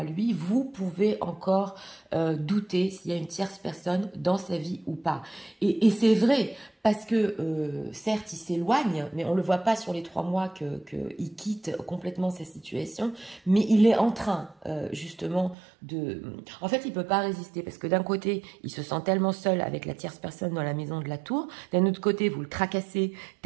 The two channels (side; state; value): left; drops out; at 15.6 s